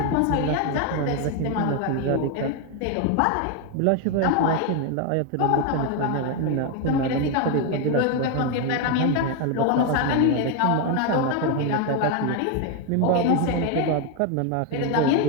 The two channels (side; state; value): both; different; correlation 0.01